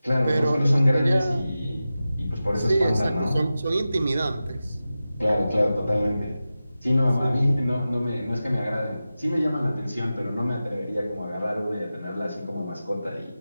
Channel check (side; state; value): both; inverted; correlation -0.94